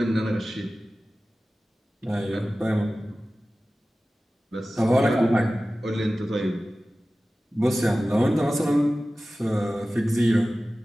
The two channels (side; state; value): both; normal; correlation 0.96